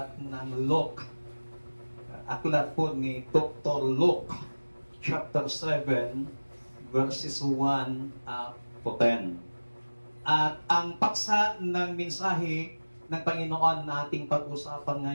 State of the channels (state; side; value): inverted; both; correlation -1.00